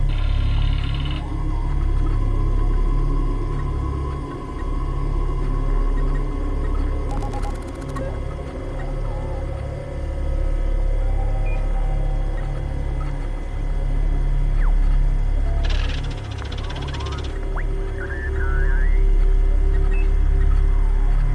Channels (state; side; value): identical; both; correlation 1.00